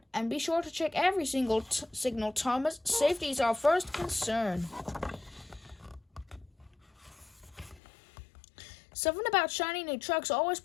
"and be sure to check every single signal, Thomas. Safety is our first concern." Something about shiny new trucks always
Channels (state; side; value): drops out; right; at 7.8 s